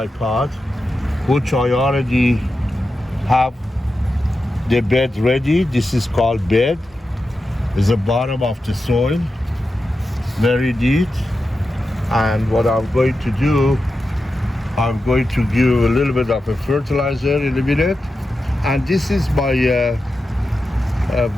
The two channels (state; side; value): normal; both; correlation 0.90